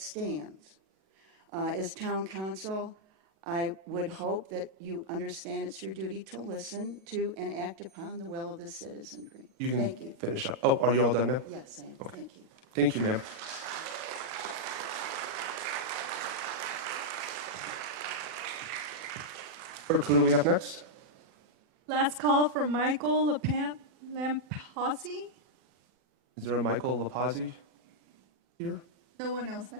As town council, I would hope that you understand it's your duty to listen to and act upon the will of the citizenry. You can Thank you. finish up. Oh, are you all done, ma'am? Yes, I am. Okay. Thank you. Thank you, ma'am. Clerk, who do we have next? Last call for Michael Lampasi. Is there a Michael Lapazzi here? No one else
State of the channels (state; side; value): late; left; 37 ms